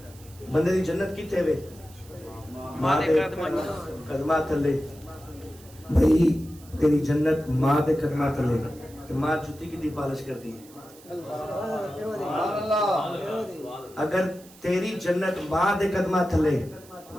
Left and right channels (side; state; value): right; noise; hiss, 23 dB below the sound